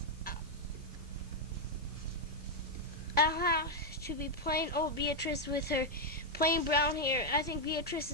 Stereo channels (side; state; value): both; normal; correlation 0.00